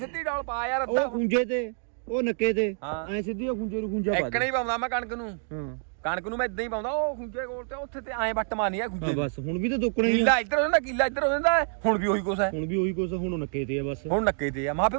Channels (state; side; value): silent; left; 60 dB below the other